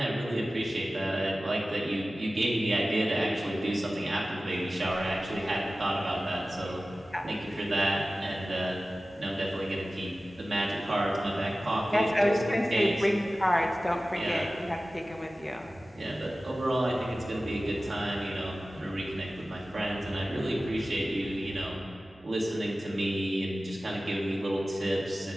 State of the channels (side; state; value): both; normal; correlation 0.96